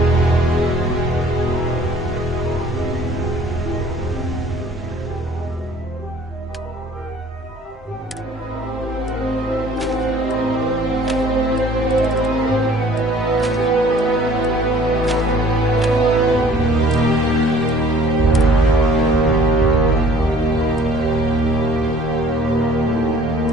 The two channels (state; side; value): normal; both; correlation 0.53